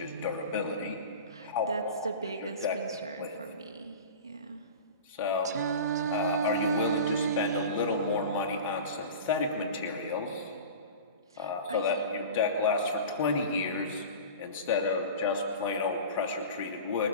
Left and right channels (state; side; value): inverted; both; correlation -0.34